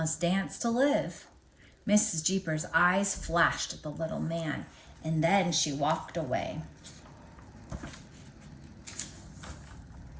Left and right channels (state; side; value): identical; both; correlation 1.00